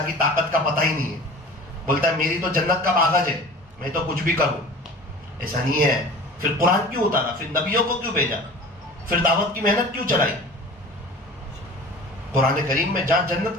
کی طاقت کا پتہ ہی نہیں ہے، بولتا ہے میری تو جنت کا باغج ہے، میں تو کچھ بھی کروں۔ ایسا نہیں ہے، پھر قرآن کیوں اتارا، پھر نبیوں کو کیوں بھیجا، پھر دعوت کی محنت کیوں چلائی؟ قرآن کریم میں جہاں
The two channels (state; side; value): normal; both; correlation 0.41